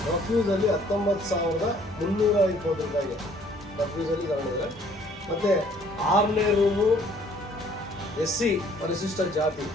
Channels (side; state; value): both; normal; correlation 0.59